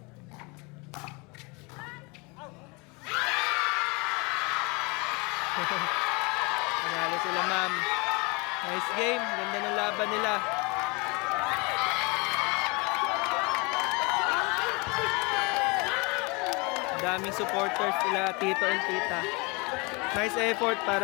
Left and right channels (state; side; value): quieter; right; 28.8 dB